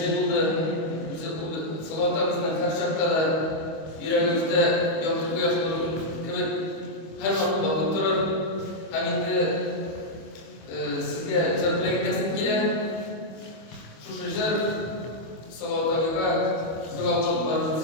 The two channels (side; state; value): right; late; 25 ms